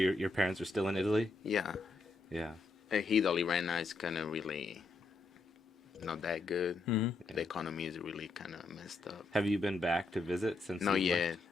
parents are still in Italy? Yeah. Yeah. Italy right now is kind of really not that good. Mm-hmm. The economy is really kind of messed up. Have you been back to visit since? Not you yet. left?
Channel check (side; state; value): right; quieter; 3.4 dB